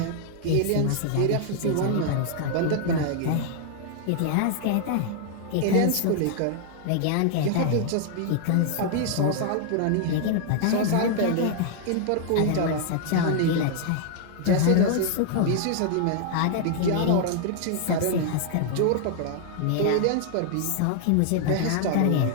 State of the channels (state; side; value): different; both; correlation 0.00